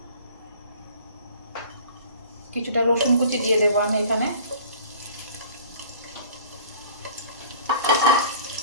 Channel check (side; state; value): both; inverted; correlation -0.46